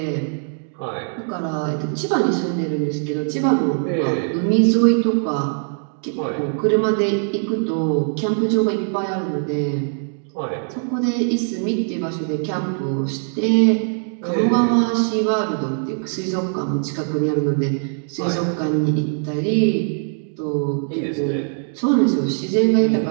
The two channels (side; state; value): left; silent; 59 dB below the other